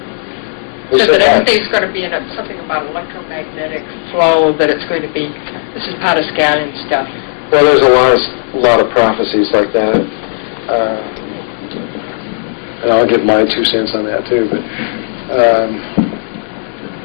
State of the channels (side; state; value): right; silent; digital silence